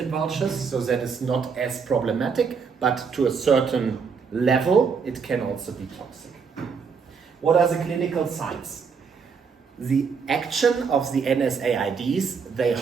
vultures, so that is not as problematic, but to a certain level it can also be toxic. What are the clinical signs? The action of the NSAIDs, they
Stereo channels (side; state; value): left; quieter; 5.8 dB